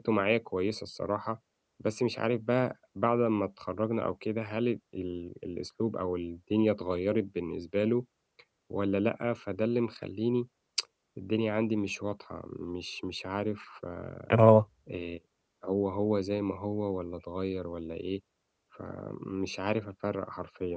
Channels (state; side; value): identical; both; correlation 1.00